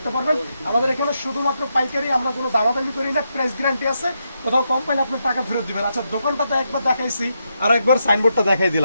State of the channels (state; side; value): inverted; both; correlation -0.83